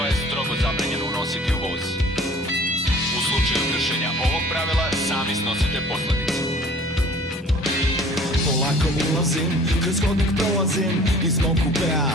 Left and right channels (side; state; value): both; normal; correlation 0.50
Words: je strogo zabranjeno unositi u voz. U slučaju kršenja ovog pravila sami snosite posledice. Polako ulazim, kroz hodnik prolazim, iz mog kupea